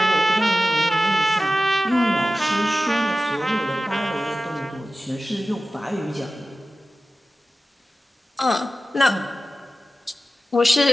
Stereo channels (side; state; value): both; normal; correlation 0.95